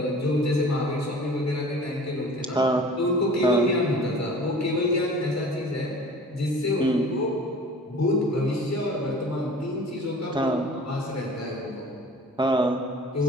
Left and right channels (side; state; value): both; normal; correlation 0.44